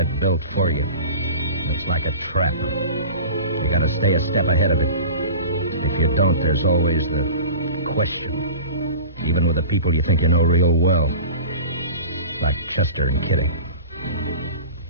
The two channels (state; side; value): inverted; both; correlation -0.36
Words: built for you. It's like a trap. You gotta stay a step ahead of it. If you don't, there's always the question. Even with the people you think you know real well. Like Chester and Kitty.